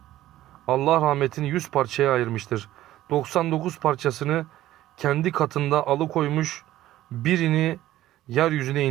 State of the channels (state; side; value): quieter; left; 14.5 dB